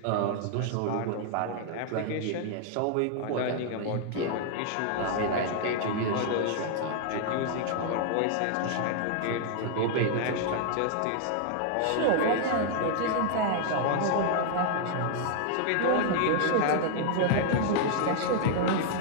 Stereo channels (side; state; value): both; different; correlation -0.01